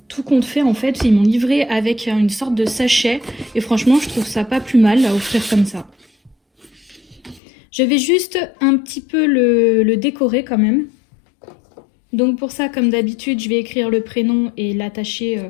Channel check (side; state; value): right; drops out; at 7.4 s